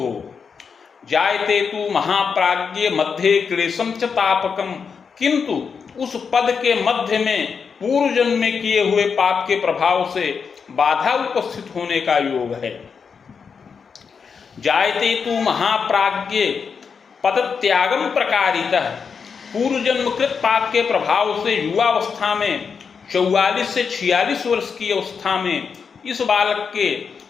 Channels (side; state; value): right; quieter; 6.0 dB